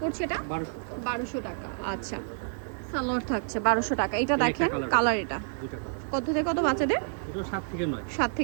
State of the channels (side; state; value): left; silent; digital silence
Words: পড়ছে এটা 1200 টাকা। আচ্ছা, সালোয়ার থাকছে 1200 টাকা। এটা দেখেন, কালার এটা। কত থেকে কত বাচ্চাদের? এটাও 7 থেকে 9। 7